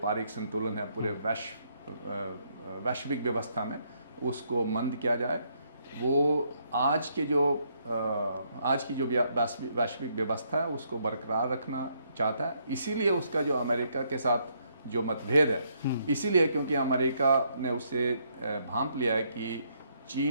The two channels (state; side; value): inverted; both; correlation -0.73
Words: संतुलन है पूरे वैश्विक व्यवस्था में उसको मंद किया जाए। वो आज की जो वैश्विक व्यवस्था है उसको बरकरार रखना चाहता है। इसीलिए उसका जो अमेरिका के साथ जो मतभेद है, इसीलिए क्योंकि अमेरिका ने उसे भांप लिया है कि